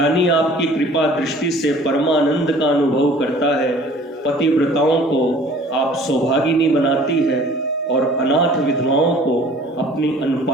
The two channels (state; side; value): normal; both; correlation 0.50